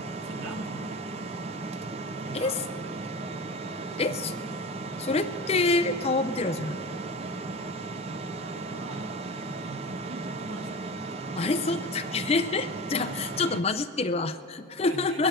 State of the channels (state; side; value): normal; both; correlation 0.31